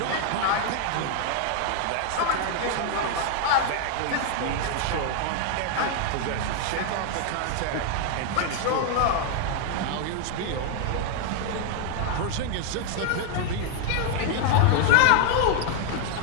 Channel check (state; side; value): different; both; correlation 0.00